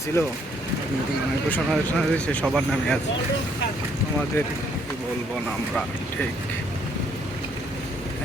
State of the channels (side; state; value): both; normal; correlation 0.68